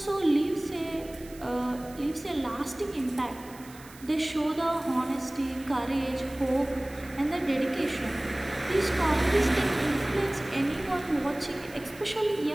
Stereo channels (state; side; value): noise; right; hiss, 21 dB below the sound